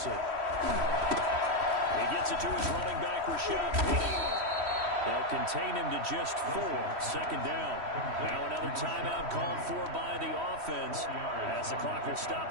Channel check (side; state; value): left; late; 3.1 ms